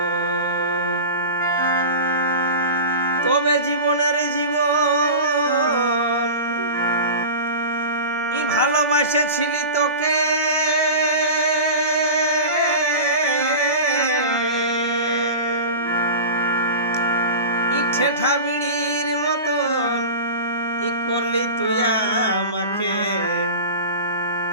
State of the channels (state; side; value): inverted; both; correlation -0.30